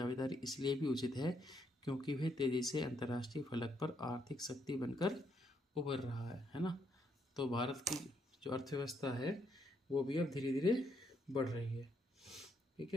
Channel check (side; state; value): both; normal; correlation 0.74